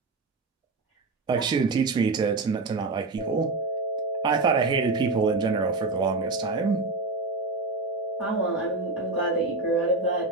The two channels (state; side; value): quieter; left; 3.5 dB